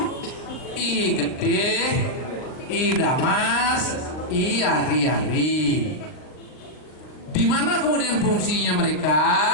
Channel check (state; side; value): late; right; 39 ms